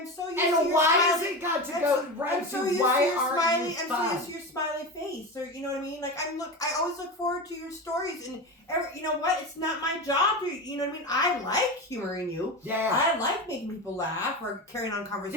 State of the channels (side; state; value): both; normal; correlation 0.23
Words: so used to your why has it got to go right to why aren't you fun? I'm so used to your smiley face, or you know what I mean? Like I always look forward to your stories, and you know what? It's not my job to, you know what I mean? I like humoring you. Yeah. I like making people laugh or carrying on